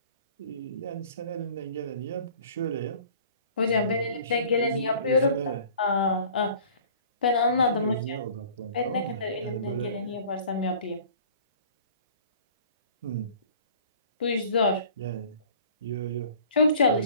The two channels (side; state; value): both; inverted; correlation -0.48